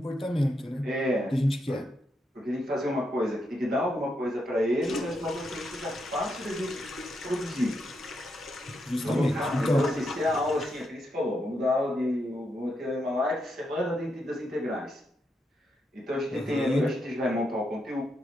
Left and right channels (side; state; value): both; normal; correlation 0.82